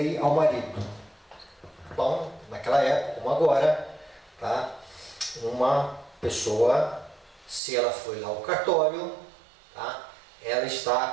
ao marido. Bom, naquela época, como agora, tá? Uma pessoa, se ela foi lá ao cartório, tá? Ela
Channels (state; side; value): drops out; left; at 7.6 s